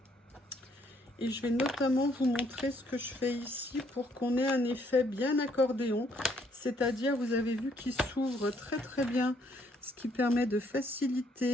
Et je vais notamment vous montrer ce que je fais ici pour qu'on ait un effet bien accordéon. C'est-à-dire, vous avez vu qu'il s'ouvre très bien, ce qui permet de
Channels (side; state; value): both; normal; correlation 0.68